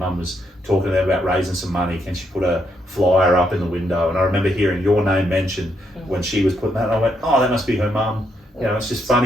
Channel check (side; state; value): both; normal; correlation 0.77